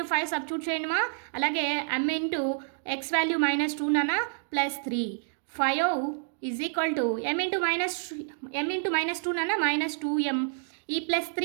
5 సబ్స్టిట్యూట్ చేయండి మా. అలాగే m into x value minus 2 నాన్న plus 3. 5 is equal to m into minus 2 నాన్న మైనస్ 2m. ఈ ప్లస్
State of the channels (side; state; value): left; silent; digital silence